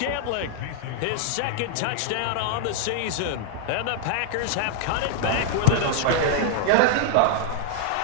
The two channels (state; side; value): different; both; correlation 0.00